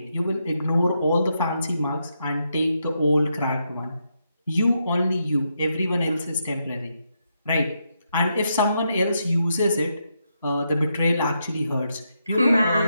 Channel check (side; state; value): both; inverted; correlation -0.81